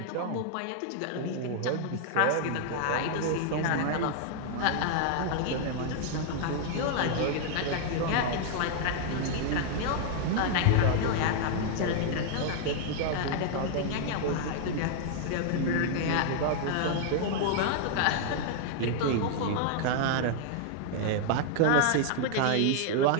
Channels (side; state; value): both; different; correlation -0.01